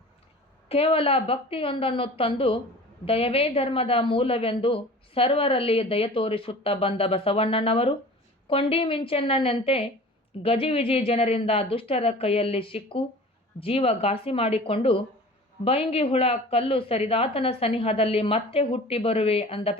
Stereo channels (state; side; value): normal; both; correlation 0.41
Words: ಕೇವಲ ಭಕ್ತಿಯೊಂದನ್ನು ತಂದು ದಯವೇ ಧರ್ಮದ ಮೂಲವೆಂದು ಸರ್ವರಲ್ಲಿ ದಯ ತೋರಿಸುತ್ತಾ ಬಂದ ಬಸವಣ್ಣನವರು ಕೊಂಡಿ ಮಿಂಚಣ್ಣನಂತೆ ಗಜಿವಿಜಿ ಜನರಿಂದ ದುಷ್ಟರ ಕೈಯಲ್ಲಿ ಸಿಕ್ಕು ಜೀವ ಘಾಸಿ ಮಾಡಿಕೊಂಡು ಬೈಂಗಿ ಹುಳ ಕಲ್ಲು ಸರಿದಾತನ ಸನಿಹದಲ್ಲಿ ಮತ್ತೆ ಹುಟ್ಟಿ ಬರುವೆ ಅಂದ